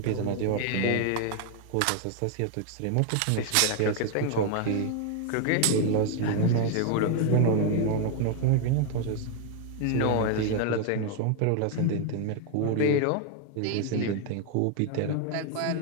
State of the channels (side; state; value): both; different; correlation 0.01